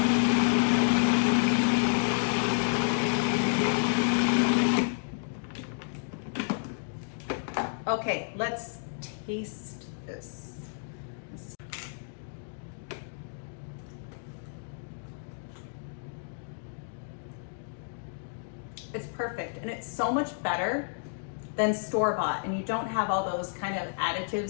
taste this. It's perfect, and it's so much better than store-bought, and you don't have all those kind of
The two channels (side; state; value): right; silent; digital silence